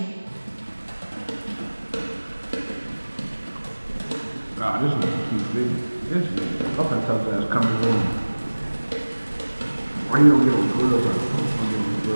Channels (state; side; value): inverted; both; correlation -1.00